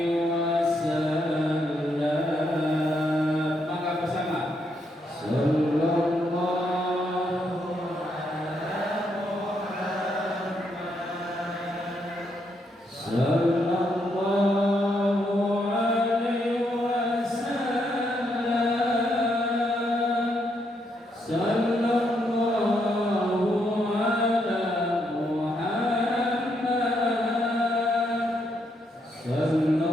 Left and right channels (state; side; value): normal; both; correlation 0.77